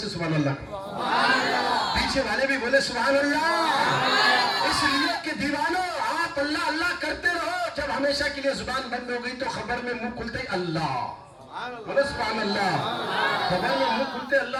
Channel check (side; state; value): both; identical; correlation 1.00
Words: سبحان اللہ، پیچھے والے بھی بولے سبحان اللہ۔ اس لیے کہ دیوانوں، آپ اللہ اللہ کرتے رہو، جب ہمیشہ کے لیے زبان بند ہو گئی تو خبر میں منہ کھلتے اللہ، بولے سبحان اللہ، خبر میں منہ کھلتے